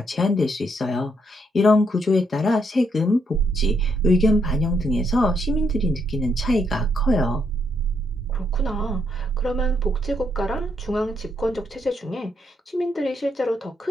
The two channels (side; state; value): both; normal; correlation 0.75